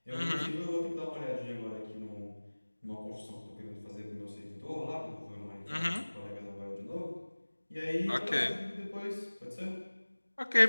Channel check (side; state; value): both; inverted; correlation -1.00